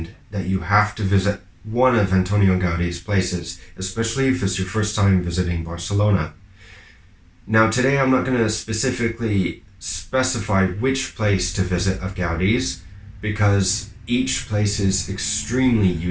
that you have to visit one of Antonio Gaudi's places, especially if it's your first time visiting Barcelona. Now, today I'm not going to specifically specify which place to visit of Gaudi's, because each place is extremely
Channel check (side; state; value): both; identical; correlation 1.00